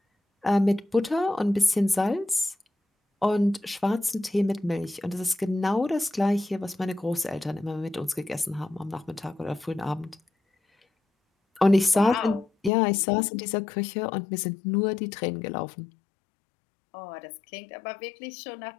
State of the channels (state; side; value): drops out; right; at 12.7 s